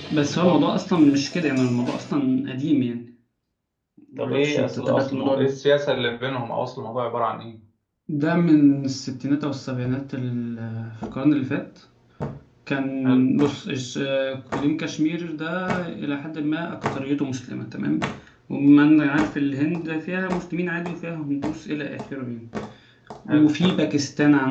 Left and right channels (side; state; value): both; identical; correlation 1.00